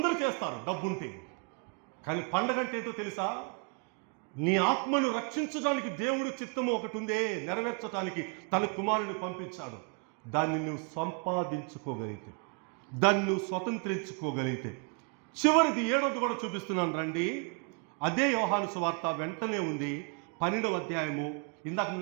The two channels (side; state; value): left; quieter; 36.0 dB